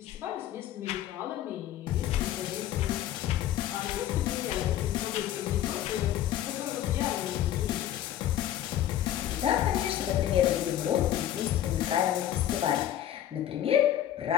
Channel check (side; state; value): right; quieter; 11.9 dB